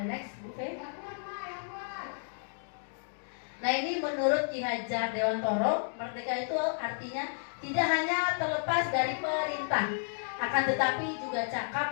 next Bu Fe. Nah, ini menurut Ki Hajar Dewantoro, merdeka itu artinya tidak hanya terlepas dari perintah, akan tetapi juga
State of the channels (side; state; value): right; silent; digital silence